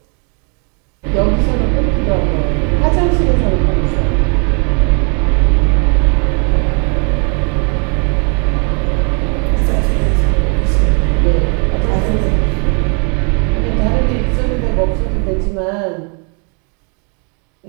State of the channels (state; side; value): quieter; left; 36.9 dB